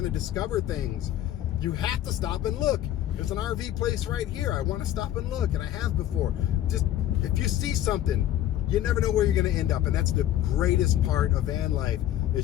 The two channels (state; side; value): quieter; right; 12.5 dB